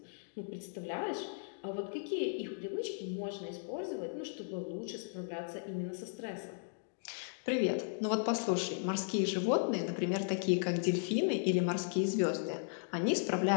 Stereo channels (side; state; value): right; silent; digital silence